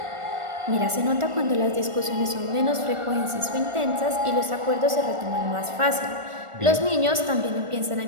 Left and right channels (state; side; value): late; left; 1.4 ms